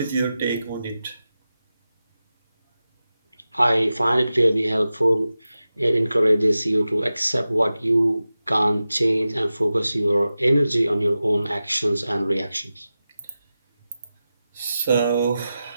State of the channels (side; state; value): both; inverted; correlation -0.93